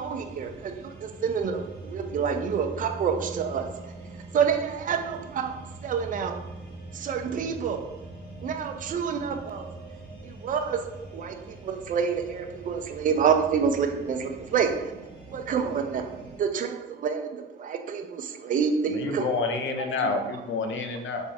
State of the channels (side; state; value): left; quieter; 4.8 dB